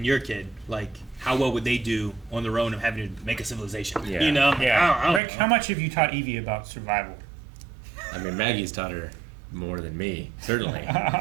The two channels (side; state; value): left; drops out; at 5.2 s